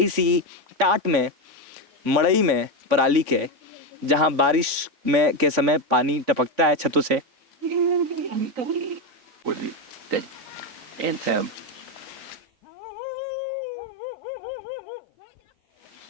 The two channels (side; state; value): left; late; 3.6 ms